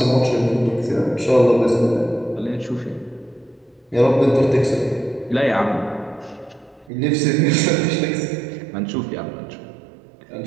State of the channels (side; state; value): left; drops out; at 6.9 s